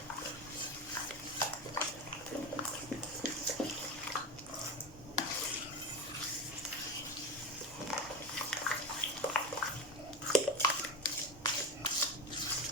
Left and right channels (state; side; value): normal; both; correlation 0.21